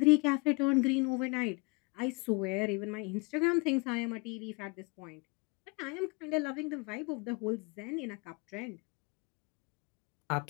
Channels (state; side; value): quieter; right; 29.2 dB